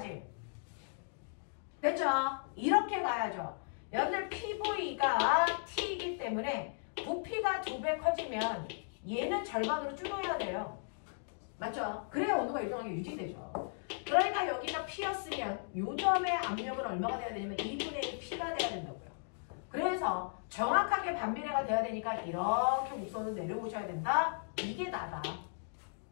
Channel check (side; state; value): right; silent; digital silence